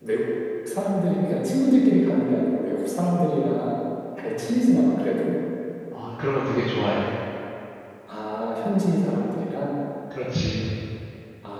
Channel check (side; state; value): both; identical; correlation 1.00